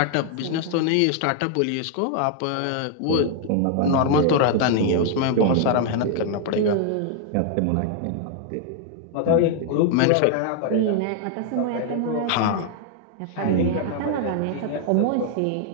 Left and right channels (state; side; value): different; both; correlation 0.00